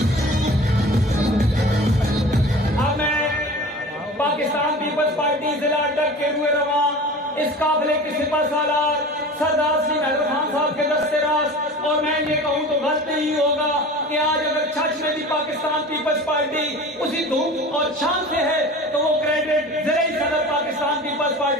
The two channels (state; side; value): normal; both; correlation 0.38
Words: اب میں پاکستان پیپلز پارٹی ضلع اڈک کے روئے رواں اس قافلے کے سپہ سالار سردار سری مہدر خان صاحب کے دست راست، اور میں یہ کہوں تو غلط نہیں ہوگا کہ آج اگر چھچ میں بھی پاکستان پیپلز پارٹی اسی دھوم اور شان سے ہے تو وہ کریڈٹ زرعی صدر پاکستان پیپلز